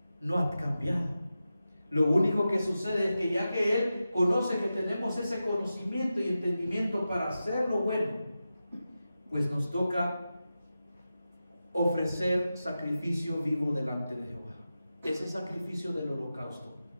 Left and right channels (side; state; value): both; inverted; correlation -0.92